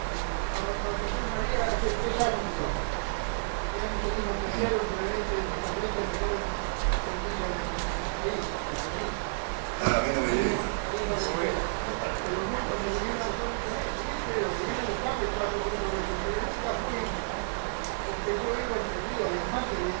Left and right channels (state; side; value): silent; left; digital silence